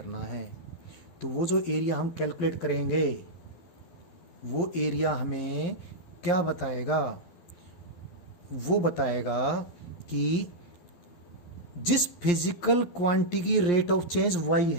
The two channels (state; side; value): late; right; 12 ms